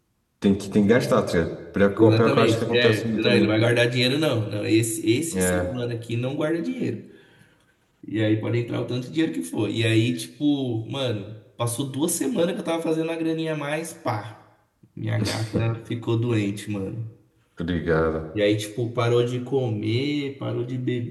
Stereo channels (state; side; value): identical; both; correlation 1.00